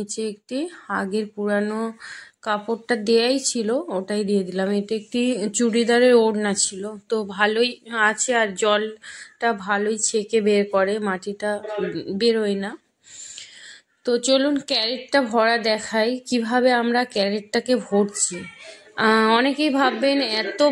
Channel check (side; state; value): both; identical; correlation 1.00